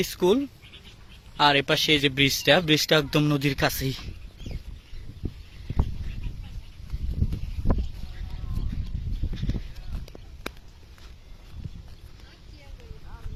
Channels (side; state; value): both; identical; correlation 1.00